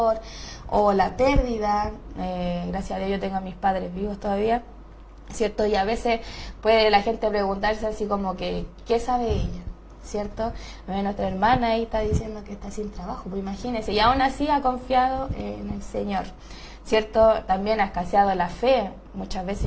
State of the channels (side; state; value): both; identical; correlation 1.00